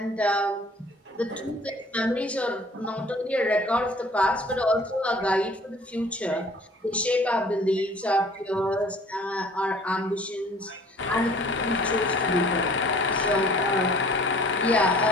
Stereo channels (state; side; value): normal; both; correlation 0.52